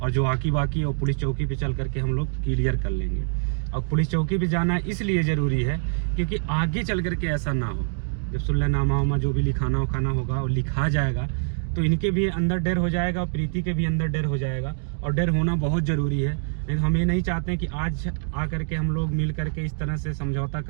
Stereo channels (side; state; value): left; silent; digital silence